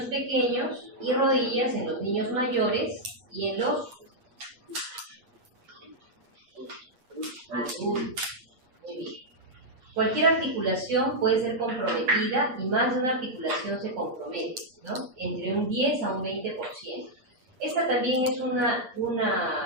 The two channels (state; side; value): late; left; 7.9 ms